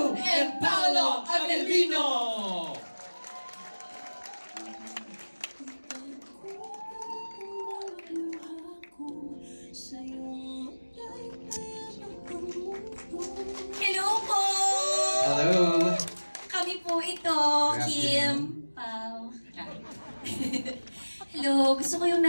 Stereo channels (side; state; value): both; inverted; correlation -1.00